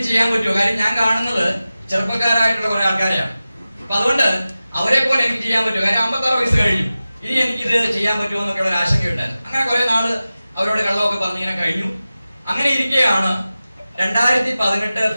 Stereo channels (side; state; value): both; inverted; correlation -0.95